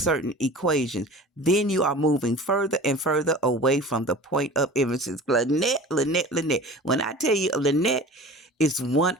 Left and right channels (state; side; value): normal; both; correlation 0.39